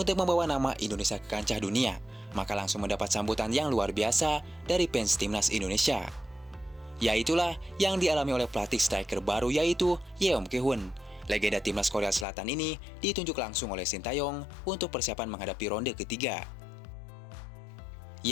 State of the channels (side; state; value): right; drops out; at 12.2 s